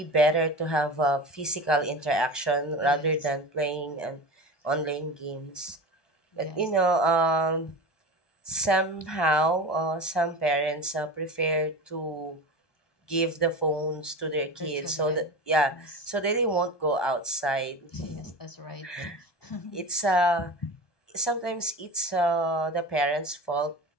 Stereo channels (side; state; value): right; late; 1.2 ms